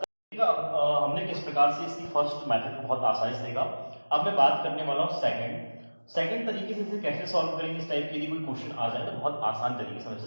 हमने किस प्रकार से इसकी फर्स्ट मेथड को बहुत आसानी से देखा। अब मैं बात करने वाला हूँ सेकंड तरीके से इसे कैसे सॉल्व करेंगे। इस टाइप के यदि कोई क्वेश्चन आ जाए तो बहुत आसान तरीके से हम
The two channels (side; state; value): both; inverted; correlation -1.00